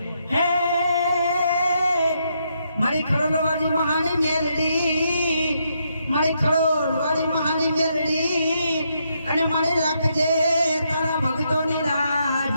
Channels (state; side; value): inverted; both; correlation -0.78